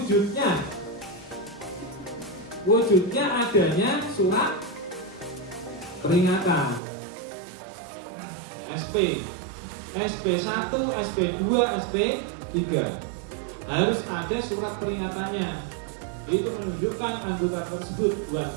wujudnya adanya surat peringatan SP, SP1, SP2, SP3 harus ada surat peringatannya. Itu menunjukkan anggota tersebut buat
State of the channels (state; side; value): drops out; left; at 6.8 s